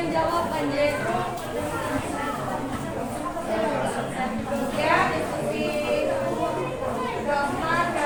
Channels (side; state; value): both; identical; correlation 1.00